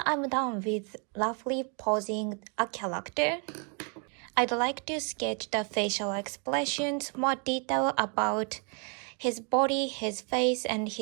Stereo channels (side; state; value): left; quieter; 38.1 dB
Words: I'm done with roughly posing a character. I'd like to sketch the facial expressions, more detail about his body, his face, and